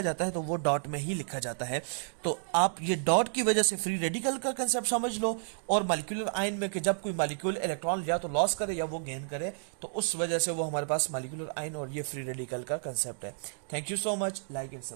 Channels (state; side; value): silent; left; digital silence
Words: है तो वो डॉट में ही लिखा जाता है। तो आप ये डॉट की वजह से फ्री रेडिकल का कंसेप्ट समझ लो, और मॉलिक्यूलर आयन में कि जब कोई मॉलिक्यूल इलेक्ट्रॉन या तो लॉस करे या वो गेन करे, तो उस वजह से वो हमारे पास मॉलिक्यूलर आयन और ये फ्री रेडिकल का कंसेप्ट है। Thank you so much, like and